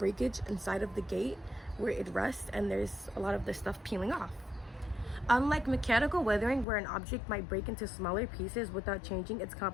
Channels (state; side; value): drops out; right; at 6.7 s